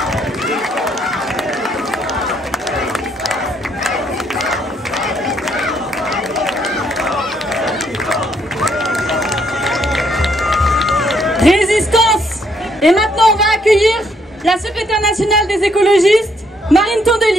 Résistance. Et maintenant, on va accueillir la secrétaire nationale des écologistes, Marine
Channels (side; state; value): both; normal; correlation 0.71